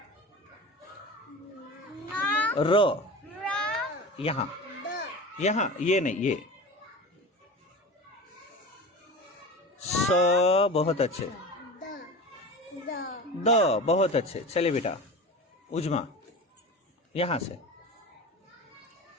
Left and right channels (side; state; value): both; normal; correlation 0.31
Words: र यहाँ ये नहीं ये। स बहुत अच्छे। द बहुत अच्छे। चलिए बेटा उजमा यहाँ से